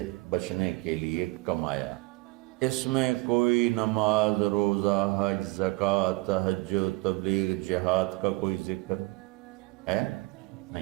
بچنے کے لیے کمایا۔ اس میں کوئی نماز، روزہ، حج، زکوٰۃ، تہجد، تبلیغ، جہاد کا کوئی ذکر ہے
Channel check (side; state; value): left; quieter; 23.9 dB